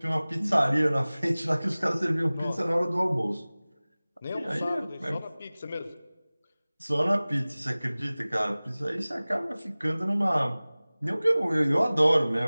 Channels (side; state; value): both; inverted; correlation -0.99